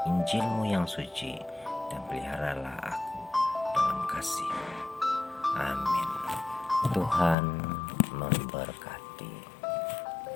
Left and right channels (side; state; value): right; drops out; at 7.4 s